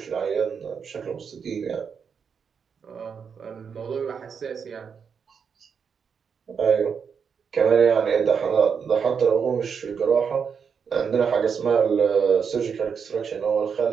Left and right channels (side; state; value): left; quieter; 6.5 dB